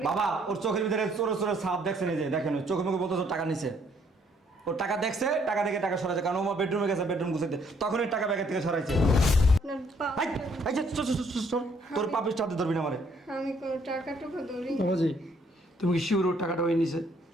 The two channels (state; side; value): normal; both; correlation 0.66